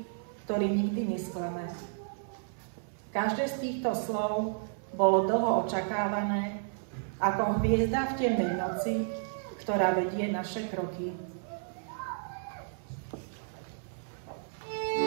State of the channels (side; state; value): left; silent; 56 dB below the other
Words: ktorý nikdy nesklame. Každé z týchto slov bolo dlho očakávané, ako hviezda v temnej noci, ktorá vedie naše kroky.